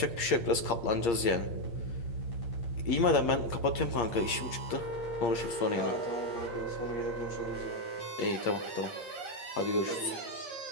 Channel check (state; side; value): late; right; 8.6 ms